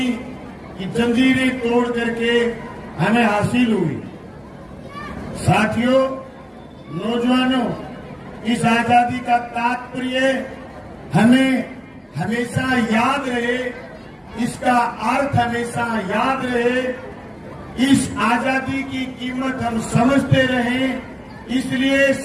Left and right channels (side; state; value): both; identical; correlation 1.00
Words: की जंजीरें तोड़ करके हमें हासिल हुई। साथियों, नौजवानों, इस आजादी का तात्पर्य हमें हमेशा याद रहे, इसका अर्थ हमेशा याद रहे, इस आजादी की कीमत हम समझते रहें। इसलिए